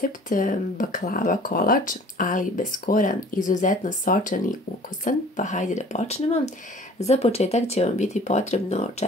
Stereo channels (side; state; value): both; normal; correlation 0.49